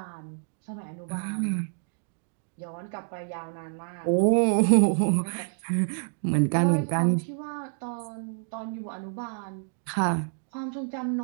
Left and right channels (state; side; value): silent; left; digital silence